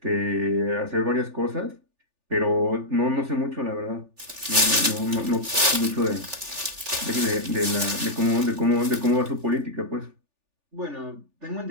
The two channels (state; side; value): late; left; 3.4 ms